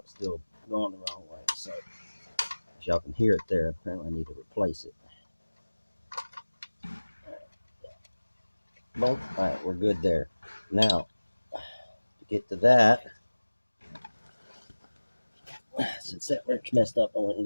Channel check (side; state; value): both; inverted; correlation -1.00